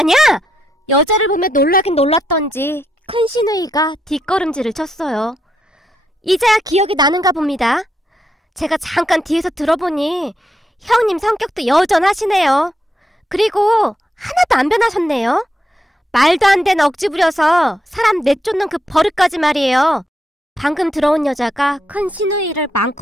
여자를 보며 놀라긴 놀랐던지 큰 시누이가 뒷걸음질을 쳤어요. 이제야 기억이 나는가 봅니다. 제가 잠깐 뒤에서 들어보니 형님 성격도 여전하시네요. 그리고 하나도 안 변하셨네요. 말도 안 되는 억지 부려서 사람 내쫓는 그 버릇까지 말이에요. 방금 들어온 여자가 큰 시누이를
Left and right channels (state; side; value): normal; both; correlation 0.81